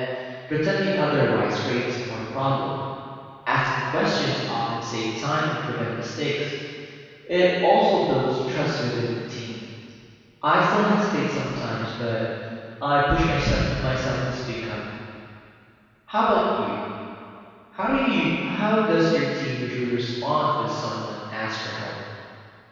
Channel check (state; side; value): identical; both; correlation 1.00